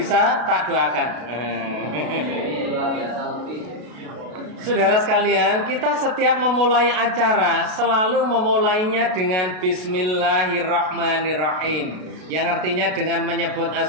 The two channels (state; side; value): late; left; 33 ms